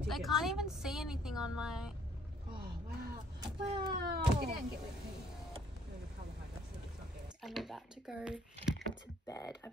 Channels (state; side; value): normal; both; correlation 0.63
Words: I can't even see anything on my... Oh, wow. Wow! Get down and get with me. I'm about to go to bed.